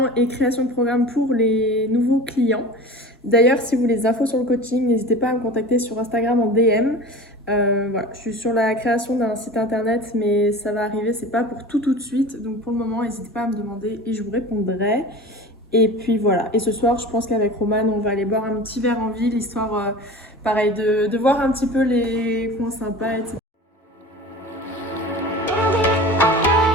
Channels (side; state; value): both; normal; correlation 0.35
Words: et création de programme pour les nouveaux clients. D'ailleurs si vous voulez des infos sur le coaching, n'hésitez pas à me contacter sur Instagram en DM. Voilà, je suis sur la création d'un site internet mais ça va arriver, c'est pas pour tout de suite, donc pour le moment n'hésitez pas à me demander et je vous répondrai. Et puis voilà, et ce soir je pense qu'avec Romane on va aller boire un petit verre en ville, histoire pareil de voir un petit peu les points sympas, etc.